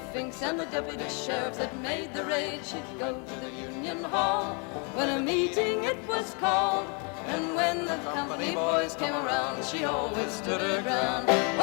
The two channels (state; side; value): quieter; right; 35.9 dB